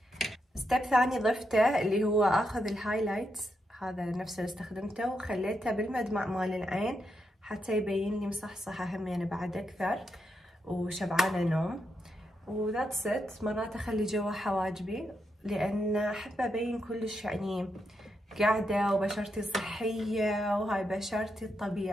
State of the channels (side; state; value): both; normal; correlation 0.83